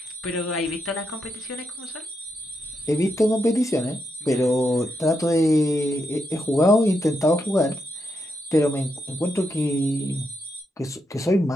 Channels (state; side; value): normal; both; correlation 0.82